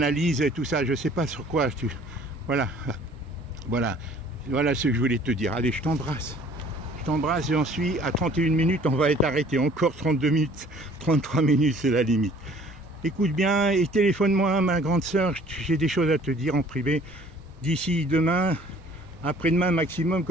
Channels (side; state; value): both; normal; correlation 0.54